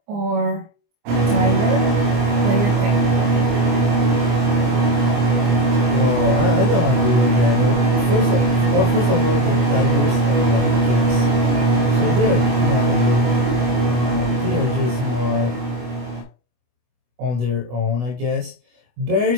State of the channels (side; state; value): left; late; 24 ms